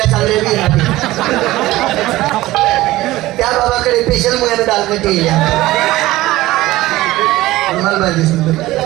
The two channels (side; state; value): left; quieter; 17.3 dB